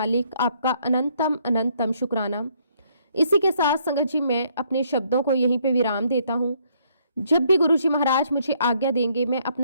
आपका अनंतम अनंतम शुक्राना। इसी के साथ संगत जी मैं अपने शब्दों को यहीं पे विराम देता हूं। जब भी गुरुजी महाराज मुझे आज्ञा देंगे मैं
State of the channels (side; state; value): both; inverted; correlation -0.68